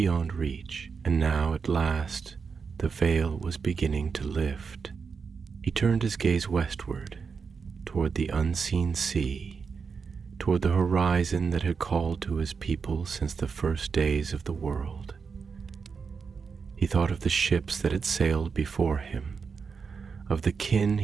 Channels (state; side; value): quieter; left; 5.5 dB